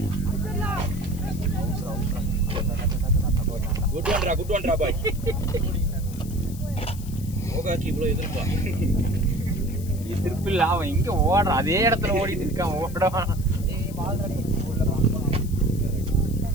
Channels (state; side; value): noise; left; hiss, 18 dB below the sound